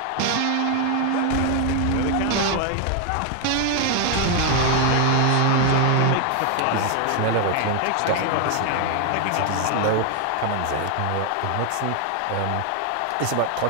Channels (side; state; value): both; different; correlation 0.00